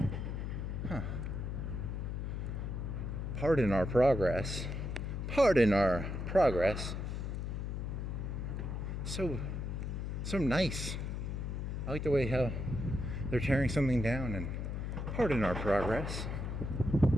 Huh. Pardon our progress. Pardon our progress. So nice. I like the way how they're tearing something down and pardon our progress.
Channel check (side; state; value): left; noise; hum, 3 dB below the sound